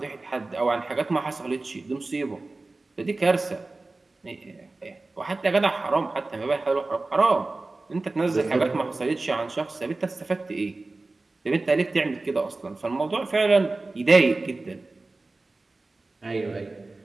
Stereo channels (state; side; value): quieter; left; 3.3 dB